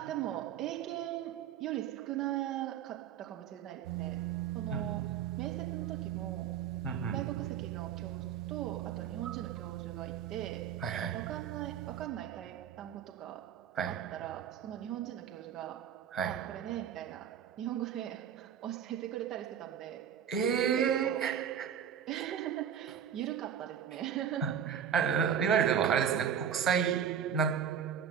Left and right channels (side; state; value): left; quieter; 8.6 dB